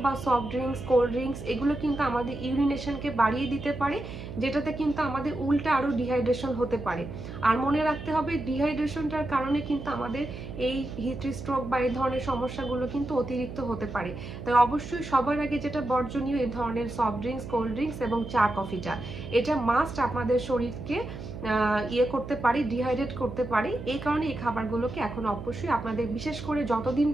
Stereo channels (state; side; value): noise; right; hum, 10 dB below the sound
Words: বা সফট ড্রিঙ্কস, কোল্ড ড্রিঙ্কস এগুলো কিন্তু আমাদের ইউরিনেশনকে বাড়িয়ে দিতে পারে, যেটাতে কিন্তু আমাদের উল্টা আরও ডিহাইড্রেশন হতে পারে। আর মনে রাখতে হবে ডিহাইড্রেশনটার কারণে কিন্তু আমাদের এই হিট স্ট্রোক বা এই ধরনের সমস্যাগুলো কিন্তু অতিরিক্ত হতে পারে। তাই অবশ্যই সবার আগে যেটা বর্জনীয়, এই ধরনের সফট ড্রিঙ্কস, কোল্ড ড্রিঙ্কস এবং চা, কফিটা এটা মাস্ট আপনাদের শরীরকে করতে পারি, ডিহাইড্রেট করতে পারি। এই কারণে এই খাবারগুলোকে এখন অবশ্যই আপনাদের, বিশেষ করে যতদিন